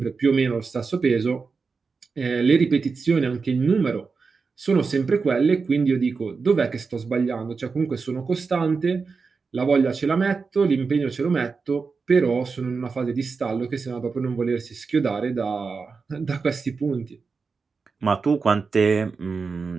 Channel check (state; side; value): quieter; left; 4.8 dB